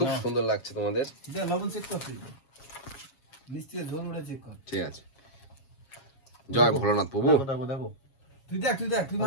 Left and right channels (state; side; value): late; right; 7.3 ms